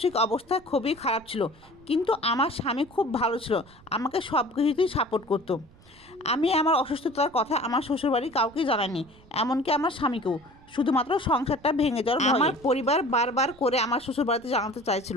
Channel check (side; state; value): right; noise; rumble, 26 dB below the sound